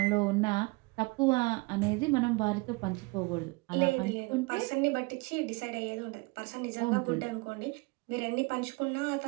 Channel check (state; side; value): quieter; left; 26.5 dB